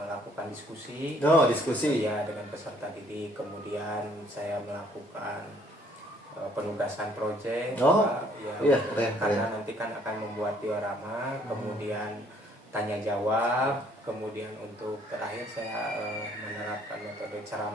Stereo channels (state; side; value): normal; both; correlation 0.62